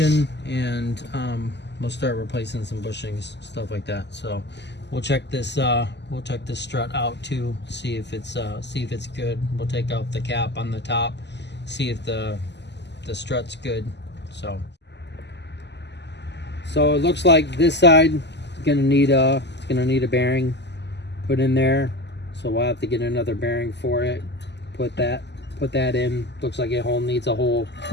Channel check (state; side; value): late; right; 0.50 ms